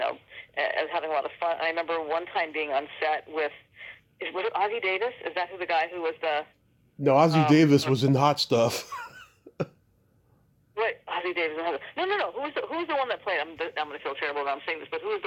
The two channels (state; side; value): identical; both; correlation 1.00